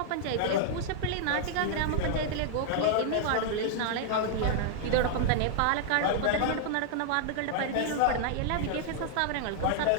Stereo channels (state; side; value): different; both; correlation -0.01